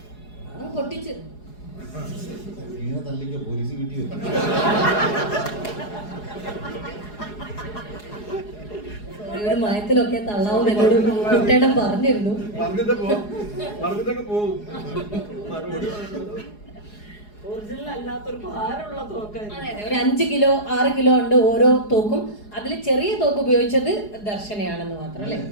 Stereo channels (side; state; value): right; late; 4.8 ms